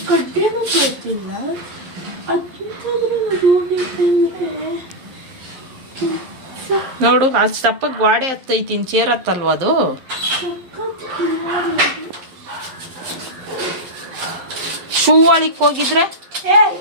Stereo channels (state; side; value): late; left; 11 ms